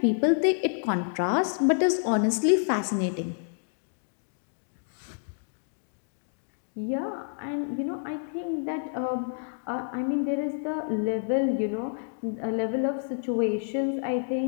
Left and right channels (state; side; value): silent; right; digital silence